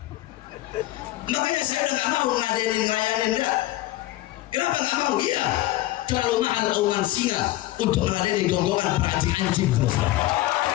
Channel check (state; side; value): quieter; right; 16.7 dB